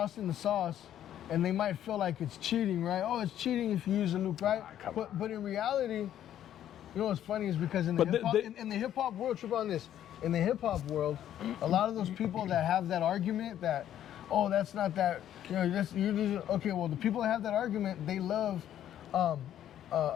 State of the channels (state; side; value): quieter; right; 11.1 dB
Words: in the sauce, and they might feel like it's cheating, right? Oh, it's cheating if you use a loop, right? But in reality, you know what's funny is because in the hip hop in the hip hop world, trip on this. In the hip hop world, a lot of those people that have that argument that, oh, that's not that, you know, okay. Well, the people that have that argument, they love